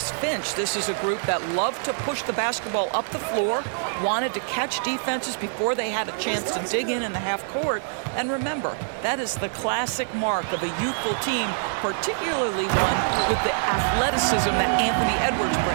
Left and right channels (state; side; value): silent; left; digital silence